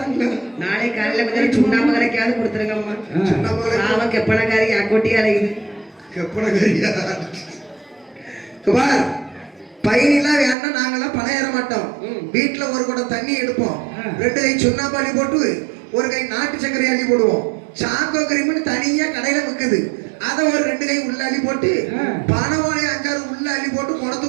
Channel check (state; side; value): drops out; left; at 10.6 s